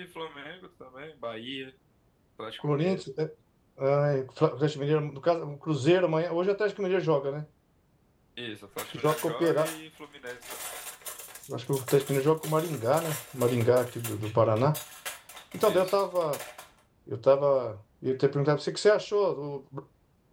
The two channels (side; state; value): both; identical; correlation 1.00